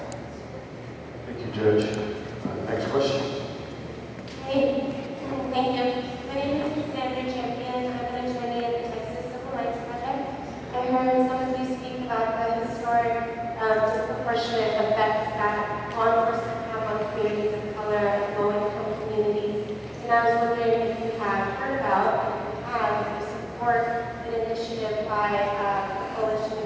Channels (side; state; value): both; identical; correlation 1.00